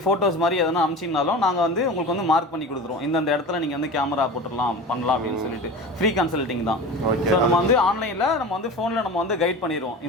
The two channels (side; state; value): both; normal; correlation 0.32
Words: ஃபோட்டோஸ் மாதிரி எதனா அமிச்சிங்கனாலும் நாங்கள் வந்து உங்களுக்கு வந்து மார்க் பண்ணி கொடுத்துருவோம். இந்த இடத்துல நீங்கள் வந்து கேமரா போட்டுடலாம் பண்ணலாம் அப்படின்னு சொல்லிட்டு ஃப்ரீ கன்சல்டிங் தான். ஸோ நம்ம வந்து ஆன்லைனில் நம்ம வந்து ஃபோனில் நம்ம வந்து கைட் பண்ணிடுவோம்.